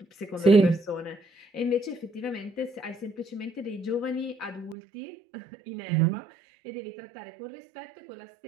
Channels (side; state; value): left; drops out; at 4.8 s